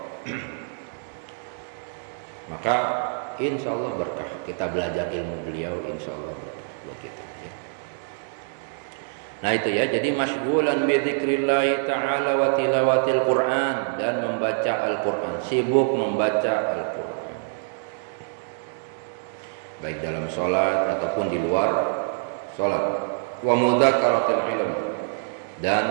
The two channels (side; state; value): left; silent; digital silence